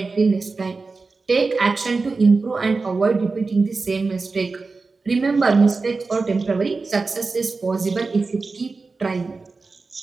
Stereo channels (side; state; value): left; quieter; 4.0 dB